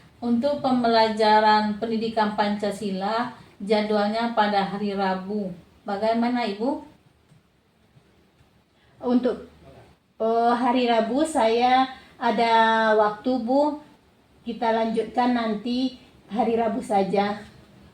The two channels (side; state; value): both; identical; correlation 1.00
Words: Untuk pembelajaran pendidikan Pancasila, jadwalnya pada hari Rabu. Bagaimana Ibu? Untuk hari Rabu saya ada waktu Bu. Kita lanjutkan nanti hari Rabu saja.